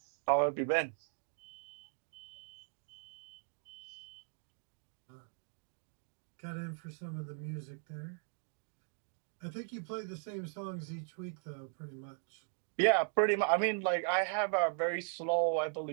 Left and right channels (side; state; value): left; silent; 52 dB below the other